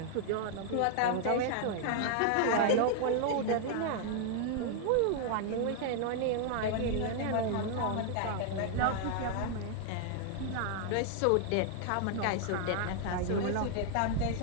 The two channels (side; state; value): both; different; correlation 0.00